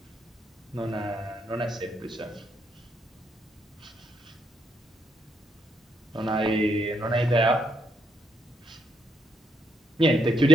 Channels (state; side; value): normal; both; correlation 0.75